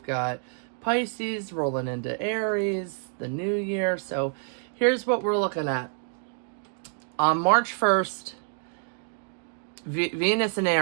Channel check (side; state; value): left; silent; 59 dB below the other